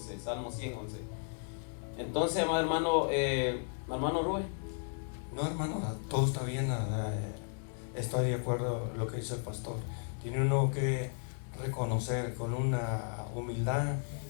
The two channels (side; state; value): right; silent; 55 dB below the other